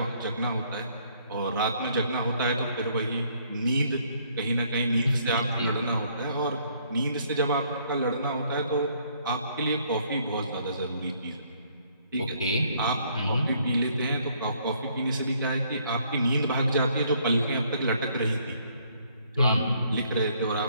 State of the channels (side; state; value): both; inverted; correlation -0.66